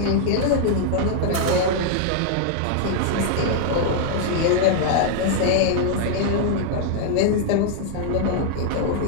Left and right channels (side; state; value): both; different; correlation 0.00